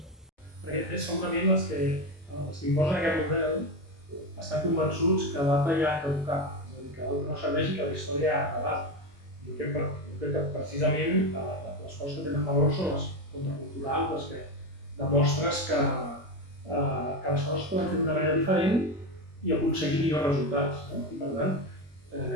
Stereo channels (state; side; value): normal; both; correlation 0.15